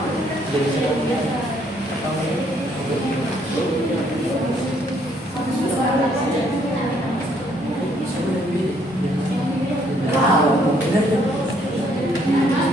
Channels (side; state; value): both; normal; correlation 0.67